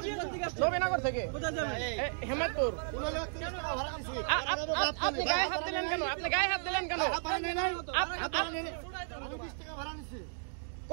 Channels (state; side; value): silent; left; digital silence